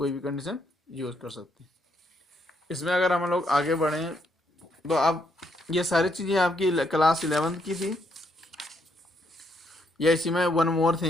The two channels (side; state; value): both; normal; correlation 0.75